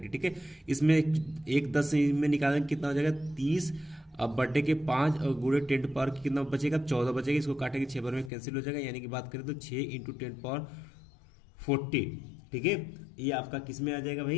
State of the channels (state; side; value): drops out; right; at 8.3 s